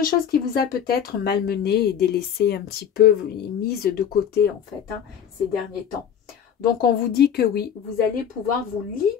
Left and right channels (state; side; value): quieter; right; 8.5 dB